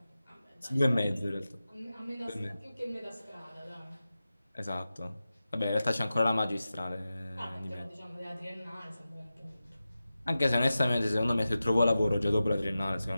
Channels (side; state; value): both; inverted; correlation -0.94